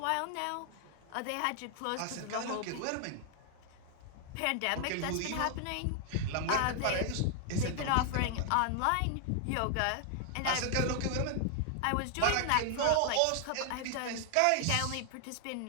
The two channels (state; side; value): different; both; correlation 0.00